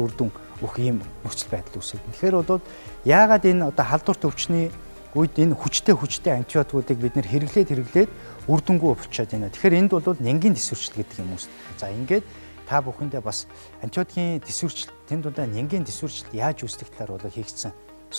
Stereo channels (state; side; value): inverted; both; correlation -1.00